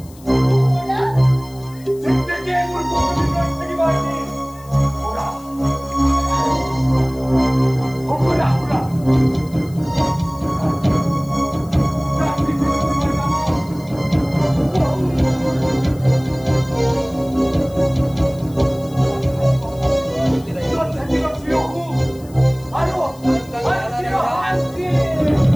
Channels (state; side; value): noise; left; hiss, 24 dB below the sound